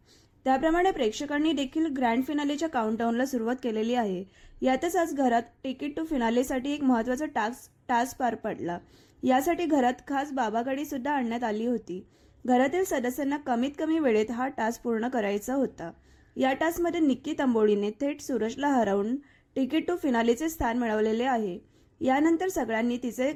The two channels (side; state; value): both; identical; correlation 1.00